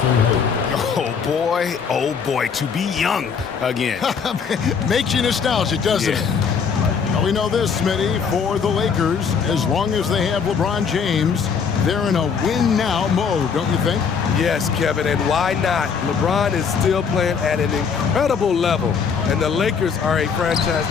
Oh boy, to be young again. Makes you nostalgic, doesn't it? Well, we know this, Smitty, for the Lakers, as long as they have LeBron James, they're in a win-now mode, don't you think? Yes, Kevin, and why not? LeBron is still playing at an incredible level, and the Lakers are a franchise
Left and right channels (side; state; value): right; quieter; 6.3 dB